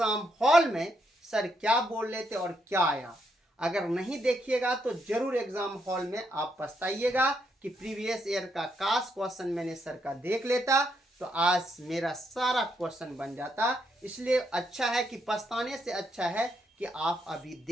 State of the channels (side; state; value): both; normal; correlation 0.77